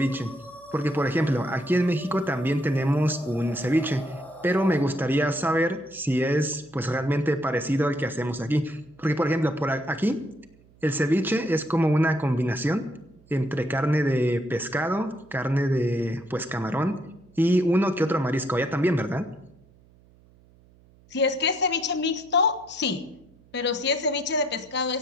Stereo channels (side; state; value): right; noise; hum, 29 dB below the sound